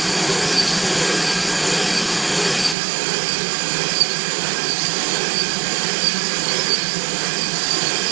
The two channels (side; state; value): left; drops out; at 2.8 s